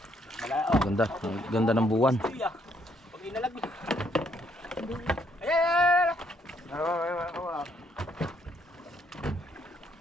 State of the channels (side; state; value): both; normal; correlation 0.70